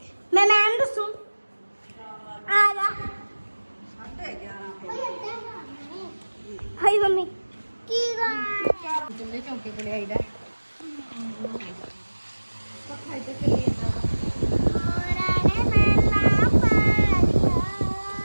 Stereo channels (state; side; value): inverted; both; correlation -1.00